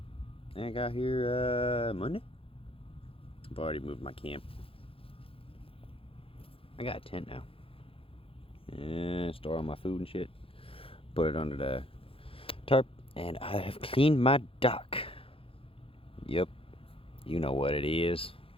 I got here Monday. I've already moved my camp. I got a tent now. And store all my food and shit. Put it under the tarp. And I have cleaned my dock. Yep. You know what it is.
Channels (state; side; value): late; right; 0.27 ms